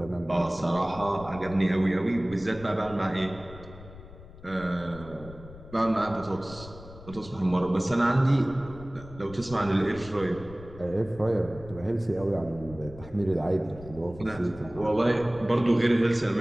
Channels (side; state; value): left; noise; rumble, 17 dB below the sound